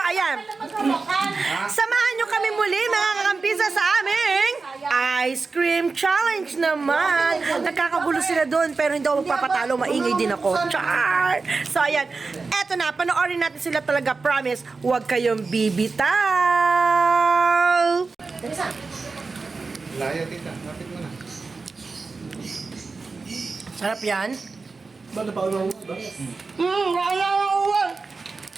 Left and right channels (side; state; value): left; quieter; 4.2 dB